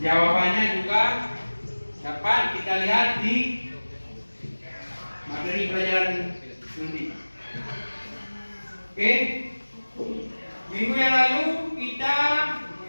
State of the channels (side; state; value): both; inverted; correlation -1.00